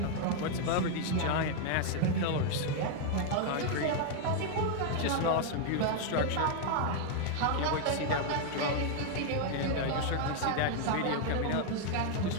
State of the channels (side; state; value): both; different; correlation 0.00